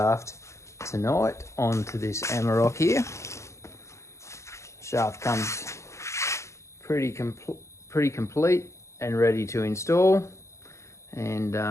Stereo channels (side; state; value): right; late; 0.14 ms